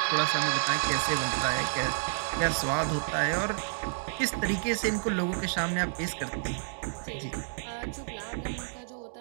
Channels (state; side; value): silent; left; digital silence